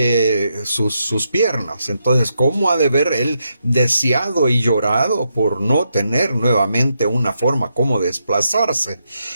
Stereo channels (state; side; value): inverted; both; correlation -0.82